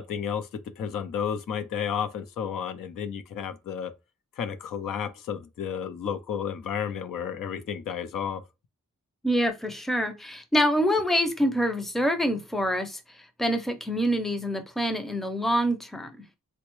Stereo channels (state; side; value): normal; both; correlation 0.72